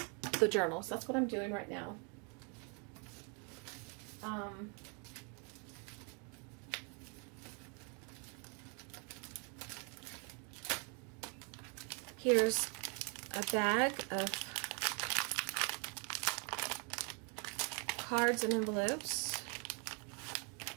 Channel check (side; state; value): left; quieter; 36.3 dB